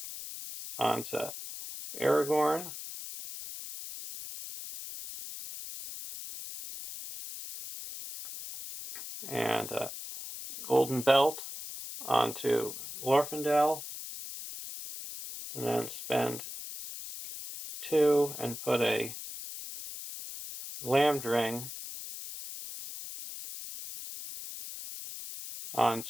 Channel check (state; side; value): noise; left; hiss, 10 dB below the sound